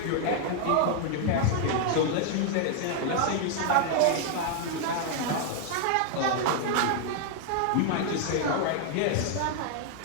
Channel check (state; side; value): different; both; correlation 0.00